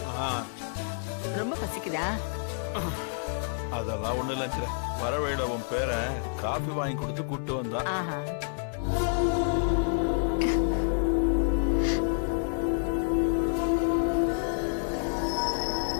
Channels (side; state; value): right; silent; 59 dB below the other